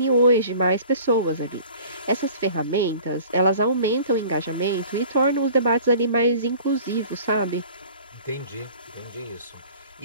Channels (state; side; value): inverted; both; correlation -0.47